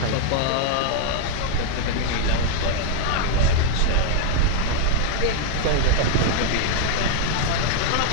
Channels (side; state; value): both; different; correlation 0.00